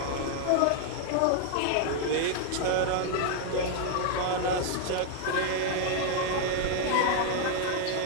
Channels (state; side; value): different; both; correlation 0.00